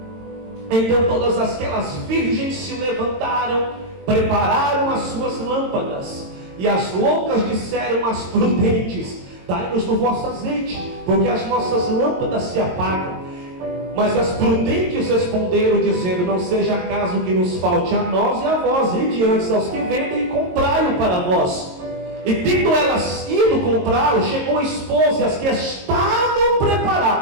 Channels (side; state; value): left; late; 22 ms